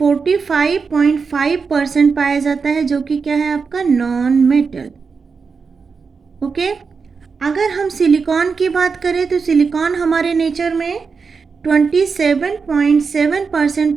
पाया जाता है, जो कि क्या है आपका? Non metal. ओके। अगर हम सिलिकॉन की बात करें तो सिलिकॉन हमारे नेचर में 27.7%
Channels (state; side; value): quieter; left; 5.2 dB